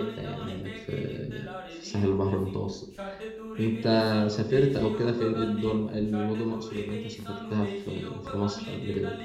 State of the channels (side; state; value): both; identical; correlation 1.00